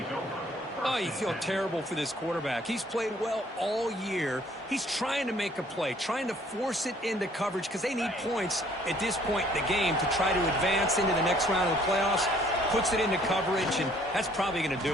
Oh, you feel terrible for this quarterback. He's played well all year. He's trying to make a play, trying to force it into coverage because they need points at this point in the game to try to advance into the next round of the playoffs. Puts it into coverage, and that's probably going to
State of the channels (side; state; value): both; normal; correlation 0.60